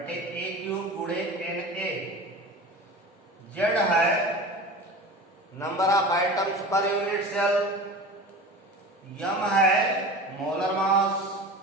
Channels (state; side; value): normal; both; correlation 0.34